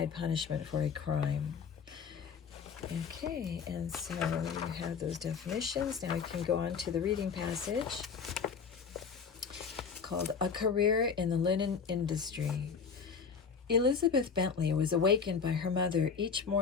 punishment for a crime. Okay, and so you have those definitions. Now we can go on to the reading passage called A Career in the Linen Industry. Elizabeth Bentley was awakened by her mother each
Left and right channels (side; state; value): right; quieter; 6.0 dB